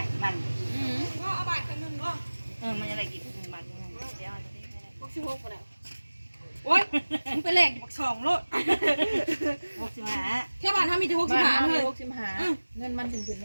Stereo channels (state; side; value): inverted; both; correlation -1.00